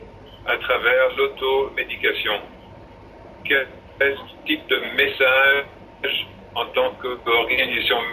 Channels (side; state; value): both; identical; correlation 1.00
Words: à travers l'automédication. Quel type de message en tant qu'organisation